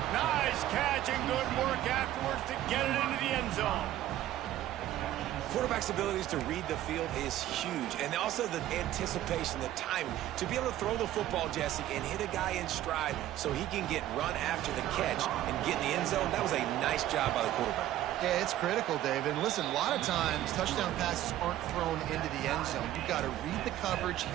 Nice catch and good work afterwards to get it into the end zone. Quarterback's abilities to read the field is huge, and also the anticipation, the timing. To be able to throw the football, Jesse, and hit a guy in stride so he can get run after the catch and get in the end zone, that was a nice job by the quarterback. Yeah, it's critical, David. And listen, a lot of times touchdown passes aren't thrown into the end zone. You've got to read the coverage,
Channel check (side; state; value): left; quieter; 13.5 dB